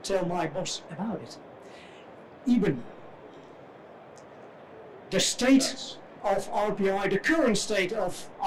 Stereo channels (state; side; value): identical; both; correlation 1.00